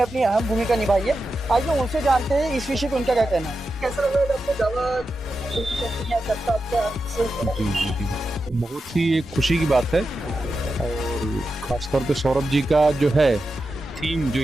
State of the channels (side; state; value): both; normal; correlation 0.90